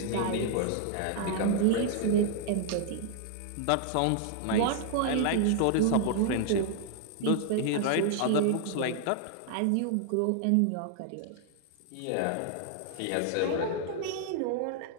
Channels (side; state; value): both; different; correlation 0.00